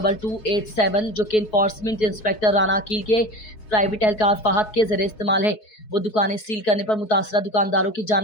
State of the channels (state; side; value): late; right; 4.7 ms